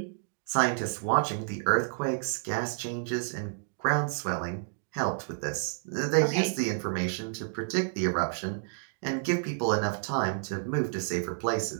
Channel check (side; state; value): left; silent; digital silence